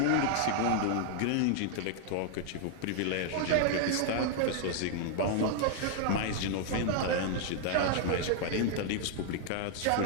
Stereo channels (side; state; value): both; different; correlation 0.00